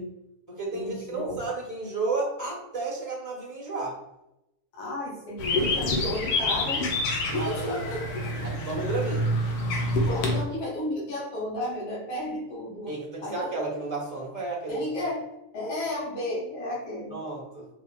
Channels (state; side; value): late; right; 7.5 ms